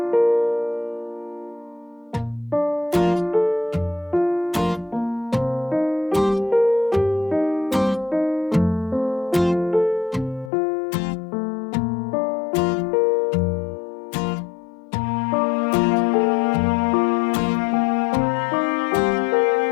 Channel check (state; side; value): drops out; right; at 10.5 s